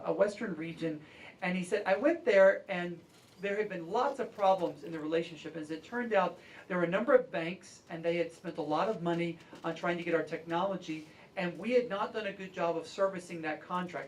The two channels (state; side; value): identical; both; correlation 1.00